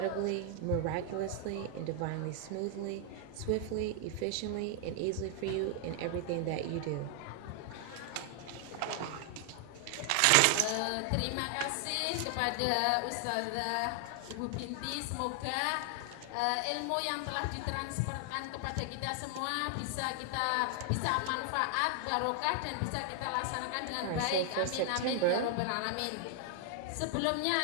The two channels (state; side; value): different; both; correlation 0.00